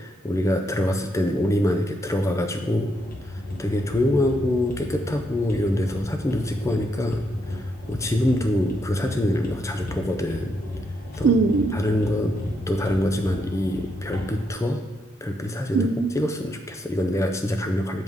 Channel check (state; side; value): normal; both; correlation 0.78